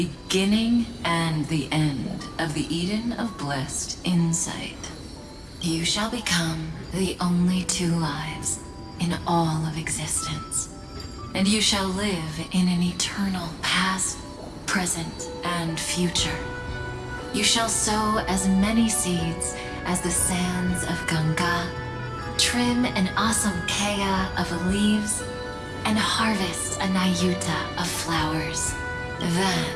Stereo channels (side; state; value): both; identical; correlation 1.00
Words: and the end of the Eden of blessed insight. You shall become the only two lives in all of existence, and you shall live in an eternal past, present, and future. You shall sow as many seeds as the sands of Ganga, trim an awesome kea of leaves, and harvest a Nayuta of flowers.